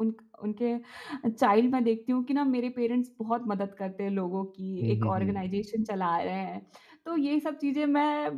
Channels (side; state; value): both; identical; correlation 1.00